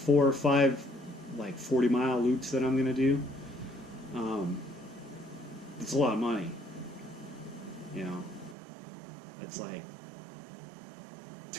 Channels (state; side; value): drops out; left; at 8.6 s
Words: or five like 40-mile loops that I'm gonna do. It's a lot of money. You know, that's like